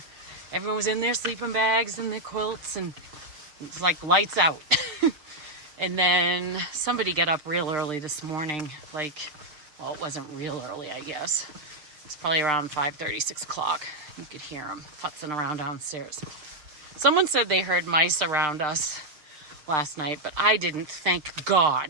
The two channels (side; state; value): left; late; 6.6 ms